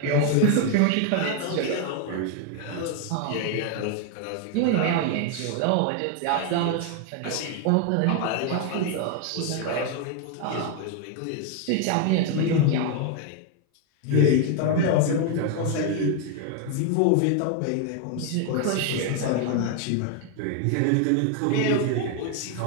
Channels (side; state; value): both; different; correlation 0.01